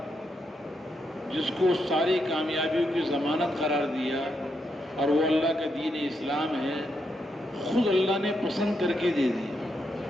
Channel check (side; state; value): both; normal; correlation 0.81